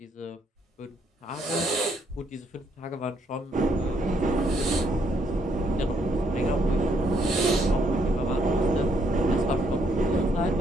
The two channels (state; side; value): normal; both; correlation 0.72